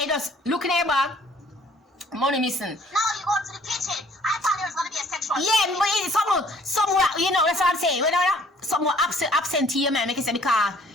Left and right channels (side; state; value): both; normal; correlation 0.57